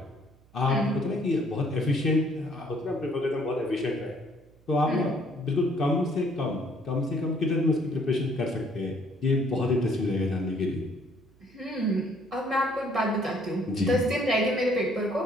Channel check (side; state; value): right; noise; hum, 29 dB below the sound